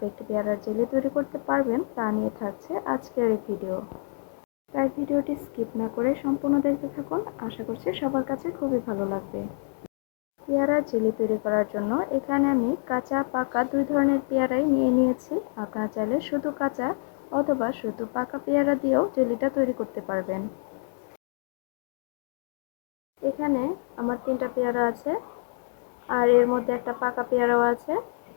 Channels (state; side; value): silent; right; digital silence